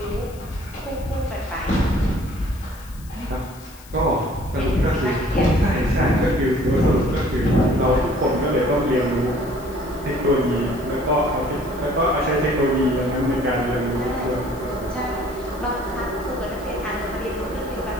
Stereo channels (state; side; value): noise; left; hiss, 22 dB below the sound